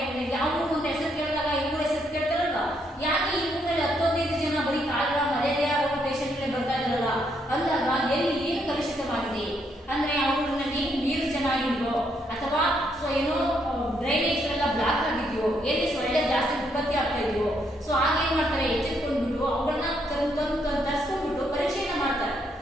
ಯಾವ ಊರು ಅಂತ ಹೆಸರು ಕೇಳಿದಾಗ ಈ ಊರ ಹೆಸರು ಕೇಳ್ತಾರಲ್ವಾ, ಯಾಕೆ ಈ ಊರಿನಲ್ಲಿ 10-15 ಜನ ಬರೀ ಕಾಲ್ರಾ ಮಲೇರಿಯಾ ರೋಗ ಪೇಷಂಟ್ಗಳೇ ಬರ್ತಾ ಇದ್ದಾರಲ್ಲ ಅಂದಾಗ ಎಲ್ಲಿ ಏನು ಕಲುಷಿತವಾಗಿದೆ ಅಂದ್ರೆ ಆ ಊರಿನಲ್ಲಿ ನೀರು ಚೆನ್ನಾಗಿಲ್ವೋ ಅಥವಾ ಸೊ ಏನೋ ಡ್ರೈನೇಜ್ಗಳೆಲ್ಲ ಬ್ಲಾಕ್ ಆಗಿದೆಯೋ, ಎಲ್ಲಿ ಸೊಳ್ಳೆ ಜಾಸ್ತಿ ಉತ್ಪತ್ತಿ ಆಗ್ತಾ ಇದೆಯೋ, ಸೊ ಆಗೇನ್ ಮಾಡ್ತಾರೆ ಎಚ್ಚೆತ್ಕೊಂಡ್ಬಿಟ್ಟು ಅವುಗಳನ್ನ ತರಿಸ್ಕೊಂಡ್ಬಿಟ್ಟು ಪರೀಕ್ಷೆಯನ್ನ ಮಾಡ್ತಾರೆ.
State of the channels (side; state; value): both; normal; correlation 0.74